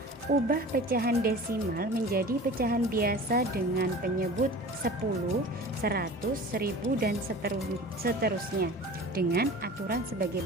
ubah pecahan desimal menjadi pecahan biasa dengan penyebut 10, 100, 1000 dan seterusnya dengan aturan sebagai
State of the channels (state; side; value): normal; both; correlation 0.39